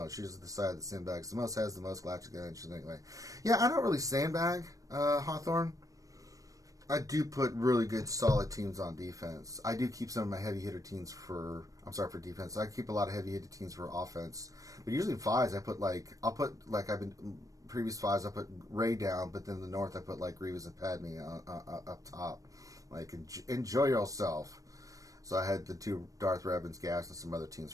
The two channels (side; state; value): left; late; 0.16 ms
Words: Usually the side that sandbags the most has the most galactic legend anyway. Yeah, I don't really sandbag Hawthorne. I do put really good, solid teams on defense. I do keep some of my heavy hitter teams for defense. I keep a lot of heavy hitter teams for offense. But usually 5s, previous 5s, I put Ray down, but then the north, I put like Grievous and Padme up top. Like, enjoy yourself. So I had the 2 Darth Revan's, Gas, and some other teams